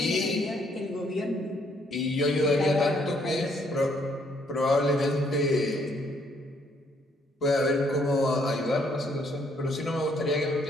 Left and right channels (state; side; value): normal; both; correlation 0.68